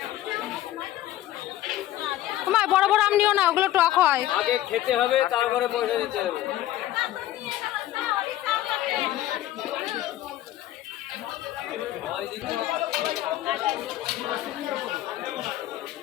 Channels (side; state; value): right; quieter; 14.1 dB